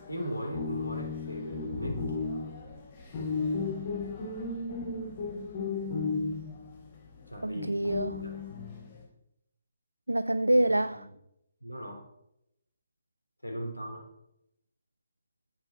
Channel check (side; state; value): both; inverted; correlation -0.80